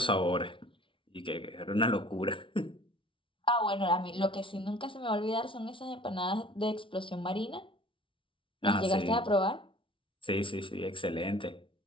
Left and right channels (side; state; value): right; late; 0.25 ms